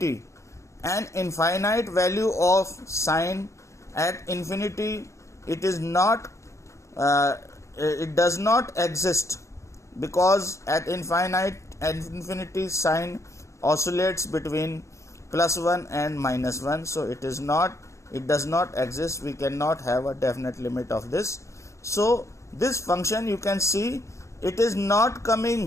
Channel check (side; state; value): right; late; 0.14 ms